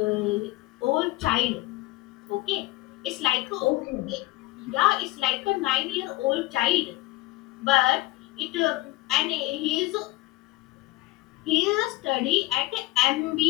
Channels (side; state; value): right; quieter; 18.6 dB